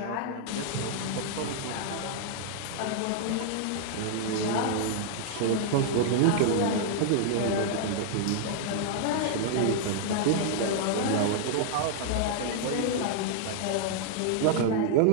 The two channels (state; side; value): different; both; correlation -0.01